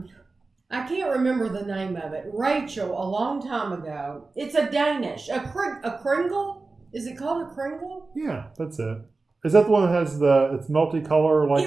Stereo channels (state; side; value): quieter; left; 3.7 dB